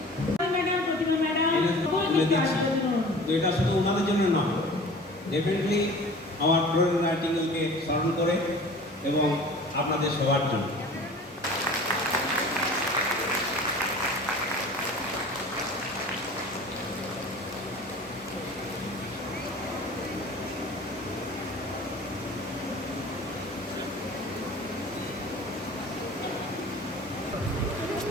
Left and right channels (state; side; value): normal; both; correlation 0.42